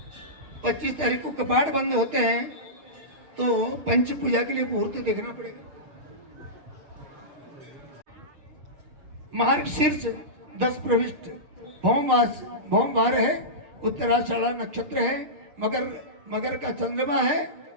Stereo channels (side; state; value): left; late; 6.6 ms